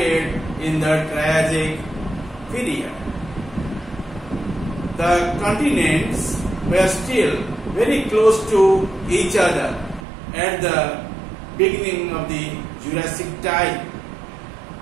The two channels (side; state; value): left; drops out; at 10.0 s